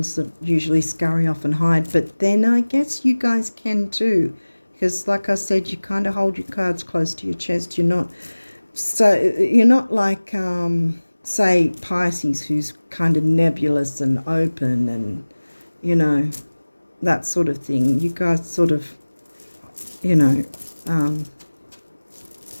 that usually scurry off and hide, but then I guess you guys can too, because like I said, you kind of hold your cards close to your chest. You're not like, say, Pisces, who's kind of nebulous and open and, that sort of thing. You guys sort of,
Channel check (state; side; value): inverted; both; correlation -1.00